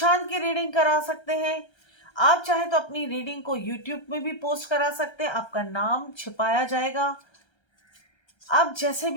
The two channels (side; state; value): right; late; 1.3 ms